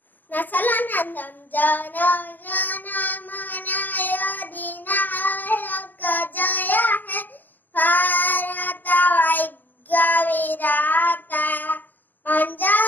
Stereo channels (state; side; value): late; right; 0.090 ms